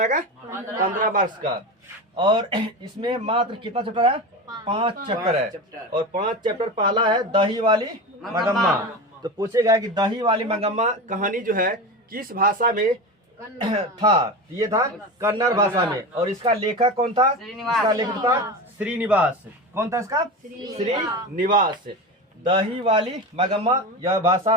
का? 15 मार्क्स का। और इसमें मात्र कितना चैप्टर है? 5 चैप्टर है। और 5 चैप्टर पहला है दही वाली मगम्मा। तो पूछेगा कि दही वाली मगम्मा कहानी जो है किस भाषा में था? ये था कन्नड़ भाषा में। और इसका लेखक कौन था? इसका लेखक था श्रीनिवास। कौन था इसका? श्रीनिवास। दही वाली मगम्मा यह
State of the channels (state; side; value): normal; both; correlation 0.25